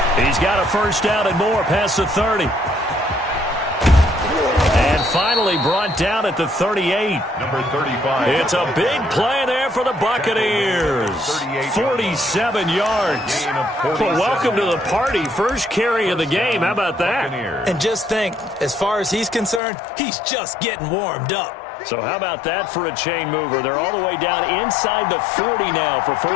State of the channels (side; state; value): right; drops out; at 19.6 s